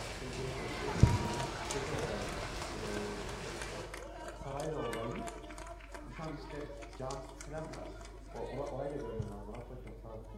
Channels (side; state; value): both; identical; correlation 1.00